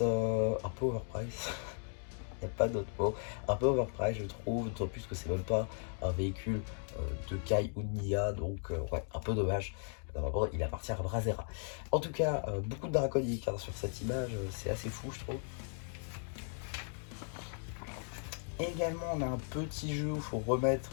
peu overpriced, il n'y a pas d'autre mot, un peu overpriced je trouve, d'autant plus que c'est même pas un véhicule de Kai ou de Nia, donc ouais, un peu dommage. Normalement, il appartient à Brasera. En tout cas, beaucoup de draconiques hein, sur cette image, c'est assez fou je trouve. Et également, on a un petit jeu où il faut remettre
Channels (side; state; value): right; silent; 53 dB below the other